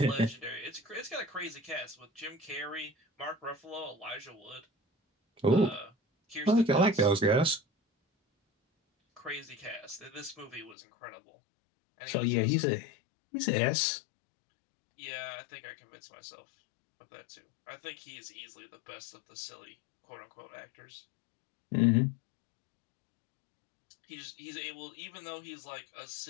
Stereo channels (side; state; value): right; drops out; at 10.8 s